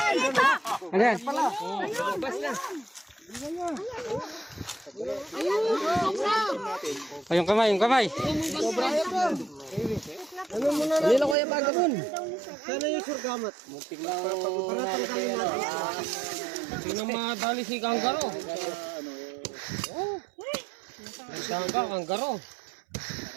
Ano yan? Bas na. Ay, yung kamay, yung kamay. Ano muna na? Dali na ko yung pagabon. Sana yung surgamat. Sino madali si Kanggaro? Nagkangga, Kanggaro.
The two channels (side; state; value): left; drops out; at 11.4 s